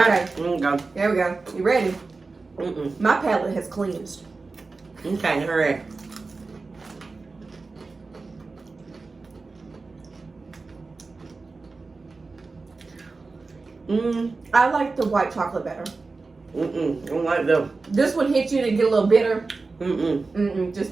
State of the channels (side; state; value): left; quieter; 3.9 dB